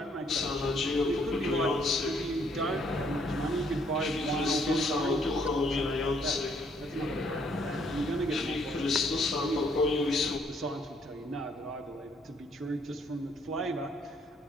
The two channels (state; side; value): normal; both; correlation 0.67